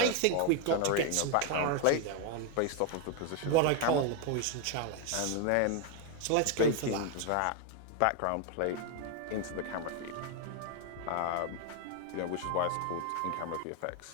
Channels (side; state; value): both; different; correlation 0.01